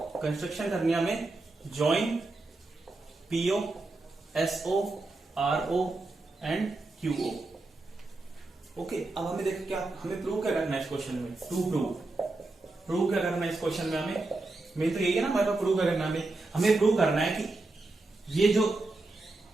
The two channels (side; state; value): left; quieter; 3.1 dB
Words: करनी है हमें join PO SO RO and QO, okay. अब हमें देखो क्या, हमें प्रूव क्या करना है इस क्वेश्चन में, प्रूव क्या करना है इस क्वेश्चन में हमें, मेन तो यही है ना हमारे पास, प्रूव करना हमें प्रूव करना है कि ये जो